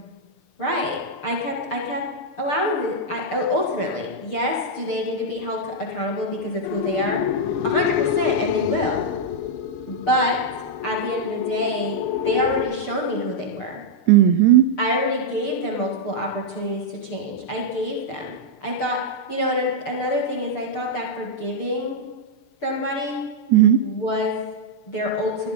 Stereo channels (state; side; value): late; right; 6.7 ms